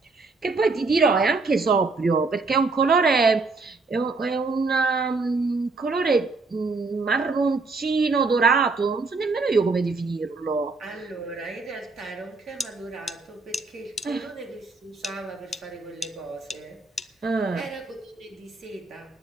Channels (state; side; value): quieter; left; 3.8 dB